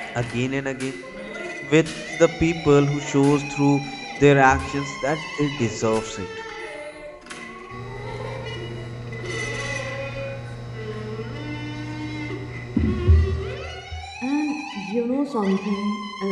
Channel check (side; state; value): both; identical; correlation 1.00